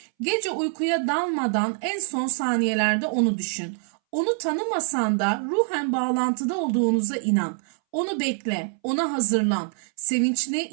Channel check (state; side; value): silent; left; 62 dB below the other